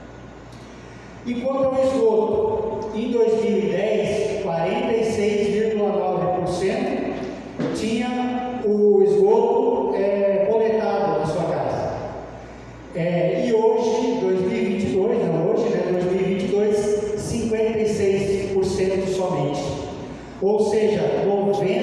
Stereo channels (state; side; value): identical; both; correlation 1.00